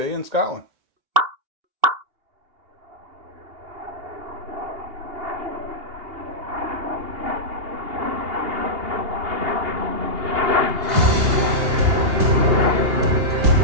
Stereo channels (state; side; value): late; left; 2.8 ms